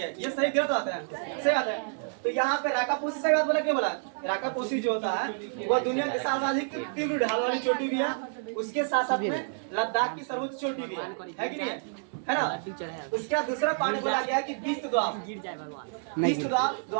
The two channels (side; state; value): left; silent; digital silence